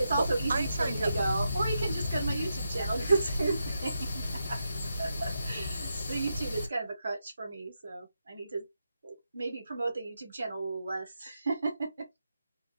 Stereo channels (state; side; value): inverted; both; correlation -0.85